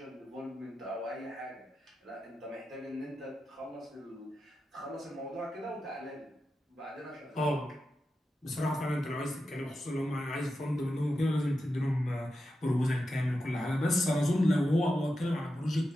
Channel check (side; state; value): both; normal; correlation 0.90